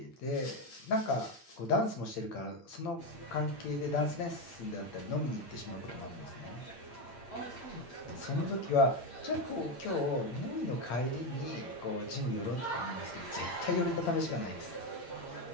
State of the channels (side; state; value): right; late; 8.7 ms